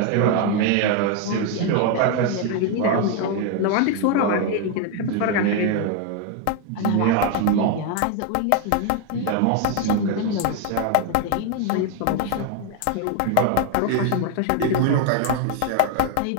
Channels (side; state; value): both; different; correlation 0.01